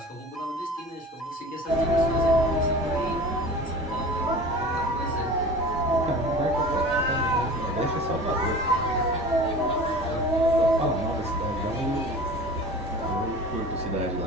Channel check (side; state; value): both; normal; correlation 0.39